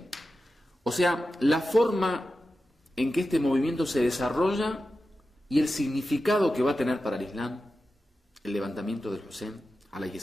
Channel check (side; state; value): both; normal; correlation 0.92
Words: O sea, la forma en que este movimiento se desarrolla y el significado que va a tener para el Islam el levantamiento del Hussein alayhi